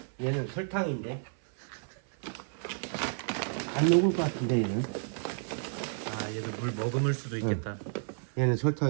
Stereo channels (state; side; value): silent; left; 57 dB below the other